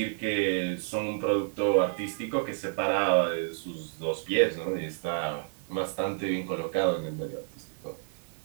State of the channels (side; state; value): left; silent; digital silence